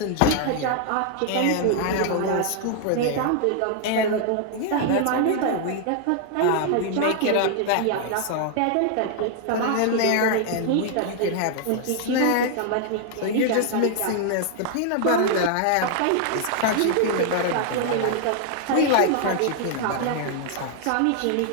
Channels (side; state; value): both; different; correlation 0.00